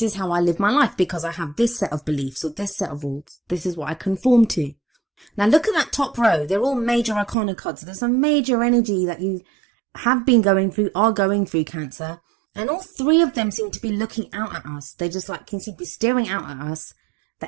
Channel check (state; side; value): drops out; left; at 7.4 s